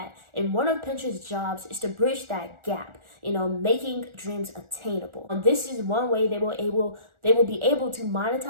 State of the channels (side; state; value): left; late; 1.4 ms